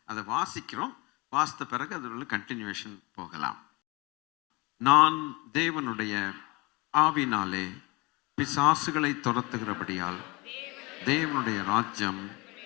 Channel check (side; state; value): right; quieter; 25.5 dB